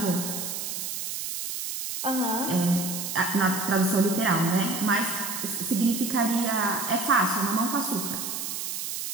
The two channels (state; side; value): noise; right; hiss, 4 dB below the sound